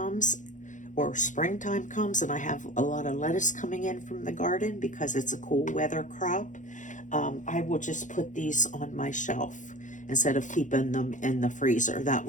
or springtime comes and I have a lot of lettuce coming in from the garden because it's a cool weather crop, I will just put these on my shelf instead of keeping them in the freezer. That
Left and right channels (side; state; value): right; late; 0.36 ms